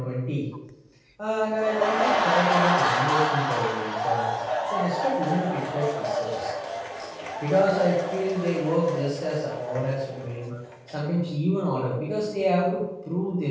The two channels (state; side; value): identical; both; correlation 1.00